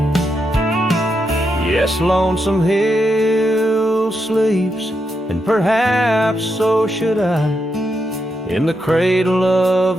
Yes, Lonesome Hill sleeps, and perhaps so should I, in the cradle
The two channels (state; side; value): normal; both; correlation 0.83